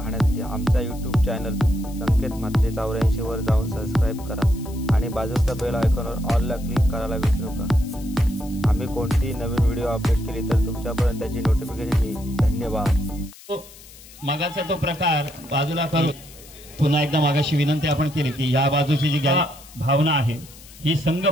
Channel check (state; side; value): noise; left; hiss, 20 dB below the sound